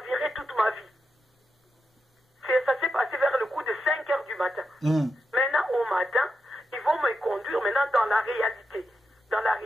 toute ma vie. Ça s'est passé vers le coup de 5 h du matin. Maintenant, au matin, ils vont conduire maintenant dans la réalité. Dans la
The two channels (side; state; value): both; normal; correlation 0.87